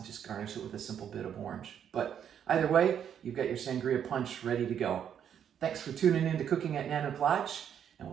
just garnish it with a simple bit of orange. But either way, you've got your sangria punch ready to go. Thanks for tuning in to Cooking at Nano Plage, and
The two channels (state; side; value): quieter; left; 8.9 dB